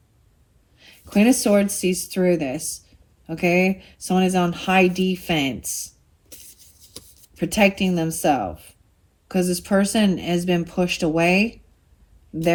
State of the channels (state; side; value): identical; both; correlation 1.00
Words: Queen of Swords sees through this. Okay, someone is on high defense, protecting themselves, because this person has been pushed away.